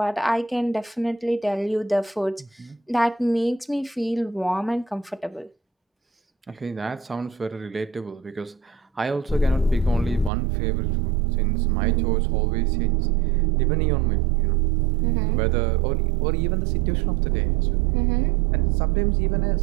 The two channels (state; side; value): drops out; left; at 10.3 s